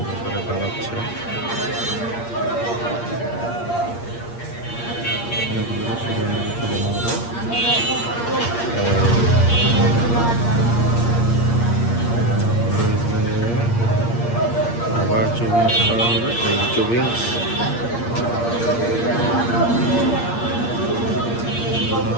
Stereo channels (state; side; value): late; right; 8.6 ms